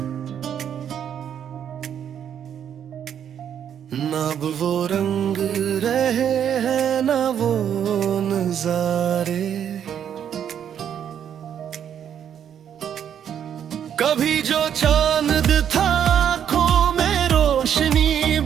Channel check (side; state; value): left; quieter; 9.0 dB